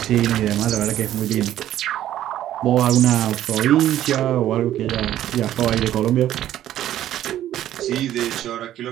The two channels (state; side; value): quieter; left; 12.4 dB